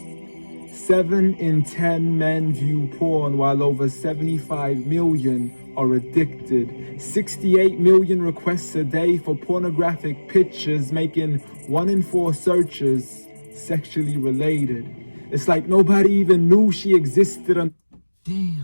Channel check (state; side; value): inverted; both; correlation -1.00